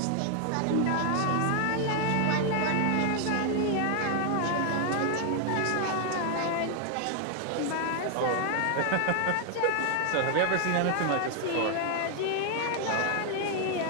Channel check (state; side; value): different; both; correlation 0.00